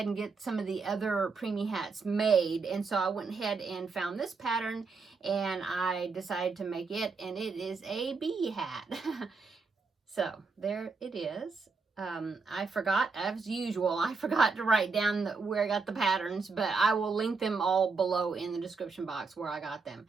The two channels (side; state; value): left; quieter; 4.5 dB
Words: and get some of the other preemie hats made. And so I went ahead and found this pattern and I decided to make it, and it is a bee hat. So there it is. I forgot, as usual, I forgot to write down where I got the patterns, but I will link them all below in the description box where I got them.